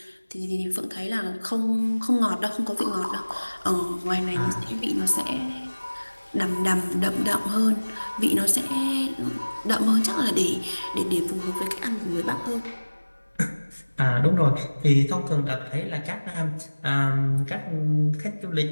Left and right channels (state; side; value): inverted; both; correlation -1.00